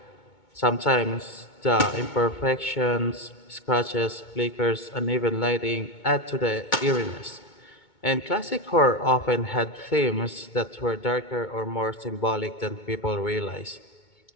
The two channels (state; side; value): late; right; 2.2 ms